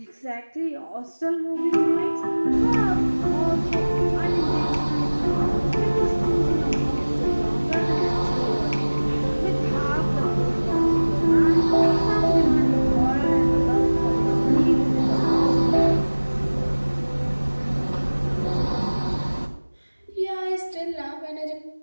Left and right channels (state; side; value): inverted; both; correlation -1.00